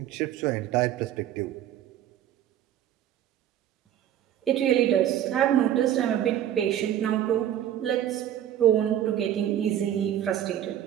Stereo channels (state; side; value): quieter; left; 11.2 dB